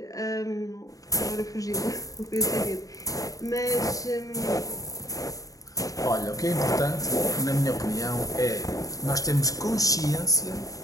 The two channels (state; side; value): late; right; 0.17 ms